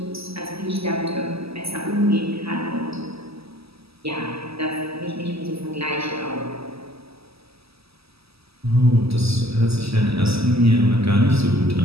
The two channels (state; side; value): late; left; 0.77 ms